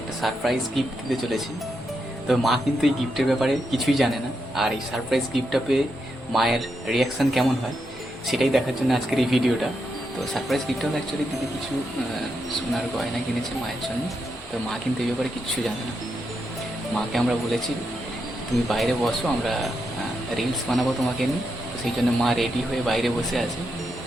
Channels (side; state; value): left; noise; rumble, 24 dB below the sound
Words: একটা সারপ্রাইজ গিফট দিতে চলেছি। তো মা কিন্তু এই গিফটের ব্যাপারে কিছুই জানে না, আর এই সারপ্রাইজ গিফটটা পেয়ে মায়ের রিয়াকশান কেমন হয় সেটাই দেখার জন্য আজকের এই ভিডিওটা। তো সারপ্রাইজ গিফটটা অ্যাকচুয়ালি দিদি কিছু সোনার গয়না কিনেছে মায়ের জন্য। তো মা কিন্তু এই ব্যাপারে কিচ্ছু জানে না। মাকে আমরা বলেছি তুমি বাইরে বসো, আমরা রিলস বানাবো তোমাকে নিয়ে। তো সেই জন্য মা রেডি হয়ে বাইরে বসে আছে,